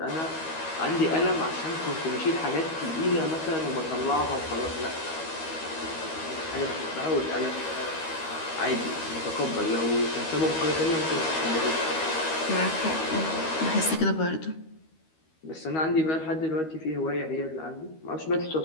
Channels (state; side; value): late; right; 13 ms